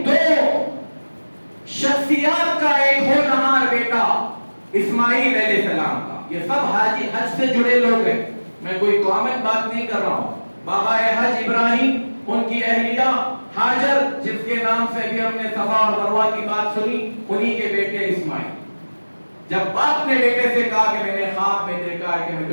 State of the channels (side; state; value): both; inverted; correlation -1.00